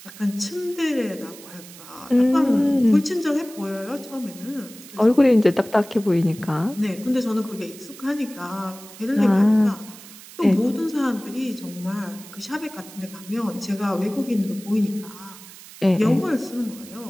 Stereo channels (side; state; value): right; noise; hiss, 18 dB below the sound